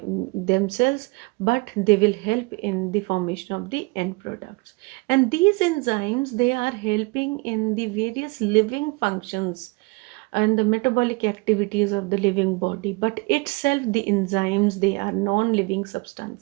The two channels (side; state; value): left; quieter; 27.1 dB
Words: themselves, but they will help in the formation of the end products. And these enzymes, they are helping in the various living functions and the metabolic activities of the living body, but itself the enzymes, they are non-living